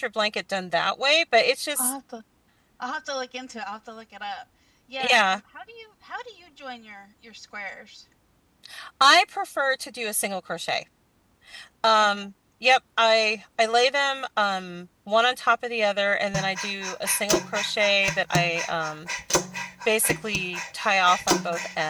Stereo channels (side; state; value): both; identical; correlation 1.00